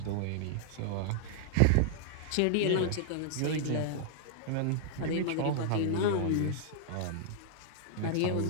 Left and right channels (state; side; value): different; both; correlation -0.01